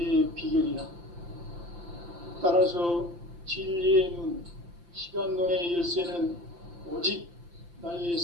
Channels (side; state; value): left; late; 5.8 ms